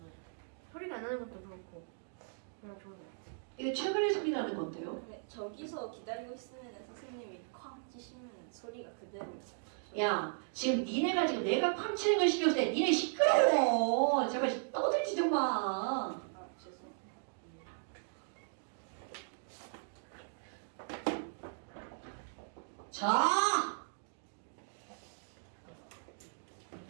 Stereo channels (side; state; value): left; silent; digital silence